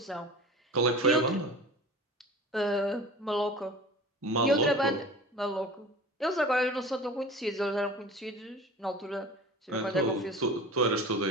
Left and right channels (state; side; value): normal; both; correlation 0.38